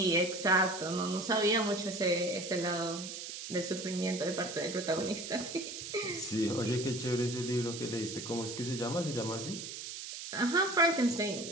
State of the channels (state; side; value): noise; right; hiss, 8 dB below the sound